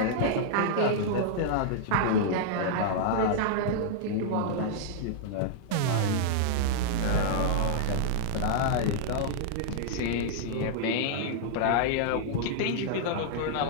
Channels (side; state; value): both; different; correlation -0.01